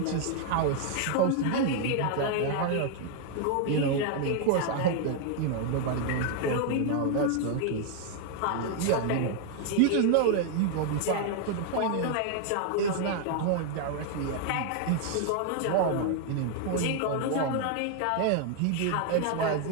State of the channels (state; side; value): different; both; correlation 0.00